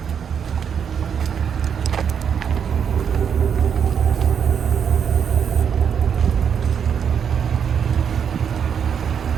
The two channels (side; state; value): left; quieter; 7.6 dB